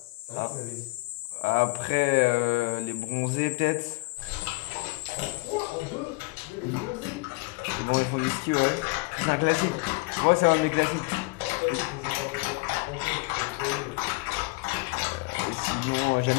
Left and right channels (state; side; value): quieter; right; 26.1 dB